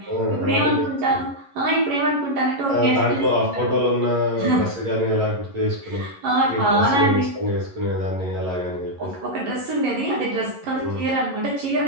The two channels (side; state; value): left; late; 11 ms